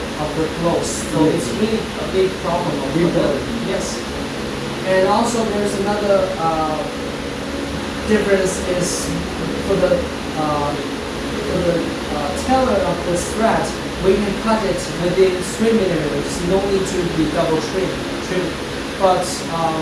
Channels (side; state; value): both; identical; correlation 1.00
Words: of the clothes, so it's really a big problem. Yes, and also there's another difference is for the tailor of the thread, we can cut it within 3 millimeters. No need to be double trim. But